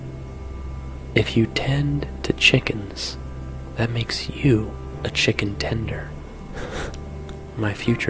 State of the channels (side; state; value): both; identical; correlation 1.00